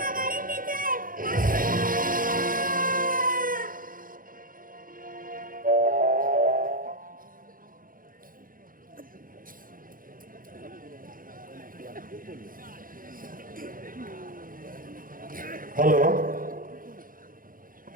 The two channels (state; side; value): late; left; 0.40 ms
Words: গাড়ির নিচে। হ্যালো,